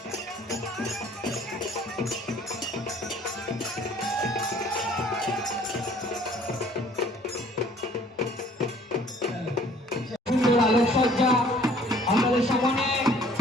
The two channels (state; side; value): normal; both; correlation 0.56